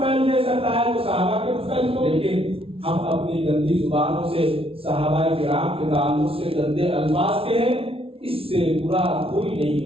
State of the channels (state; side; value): late; left; 0.27 ms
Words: دے سکتا ہے تو صحابہ کے طفیل کو۔ لیکن ہم اپنی گندی زبانوں سے صحابہ کرام کے تعلق سے گندے الفاظ کے ہیں، اس سے برا کوئی نہیں